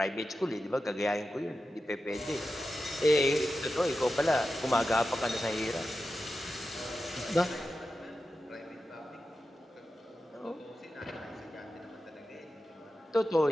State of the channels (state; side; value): normal; both; correlation 0.92